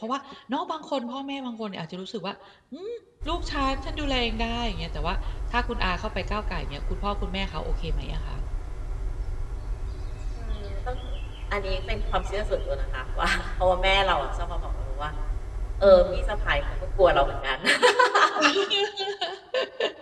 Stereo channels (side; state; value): both; identical; correlation 1.00